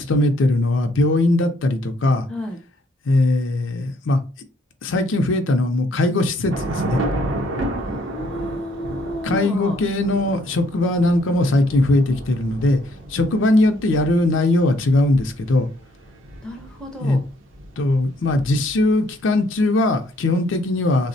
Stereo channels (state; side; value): normal; both; correlation 0.67